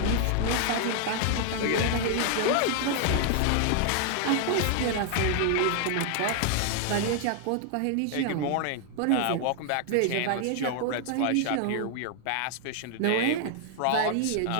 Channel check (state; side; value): different; both; correlation 0.00